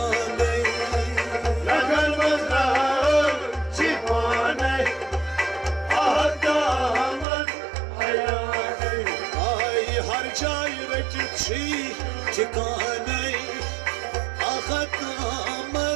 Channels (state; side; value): drops out; left; at 7.2 s